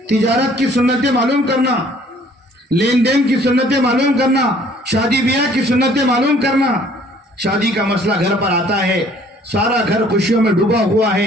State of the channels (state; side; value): normal; both; correlation 0.57